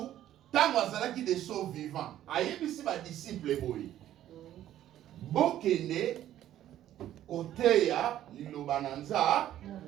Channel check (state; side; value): quieter; left; 12.3 dB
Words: tant azalaki des sauts vivants. Ayebisi ba disciple boy. Bokene koteya liloba nanza.